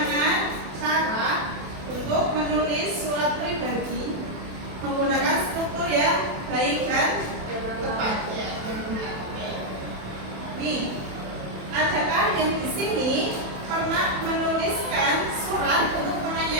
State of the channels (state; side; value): late; left; 27 ms